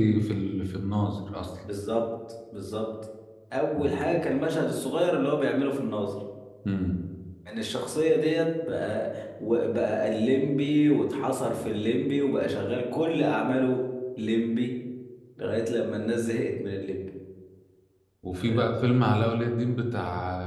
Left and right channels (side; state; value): both; identical; correlation 1.00